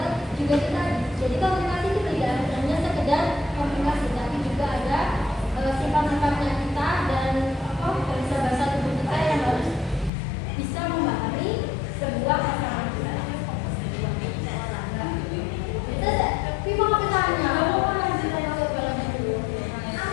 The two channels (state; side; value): drops out; right; at 10.1 s